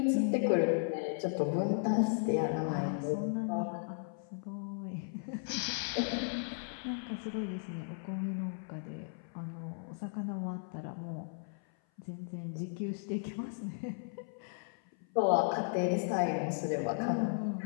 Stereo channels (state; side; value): silent; right; 54 dB below the other